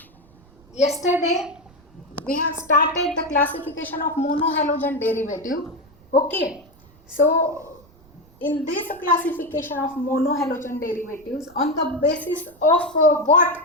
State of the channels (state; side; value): noise; right; rumble, 27 dB below the sound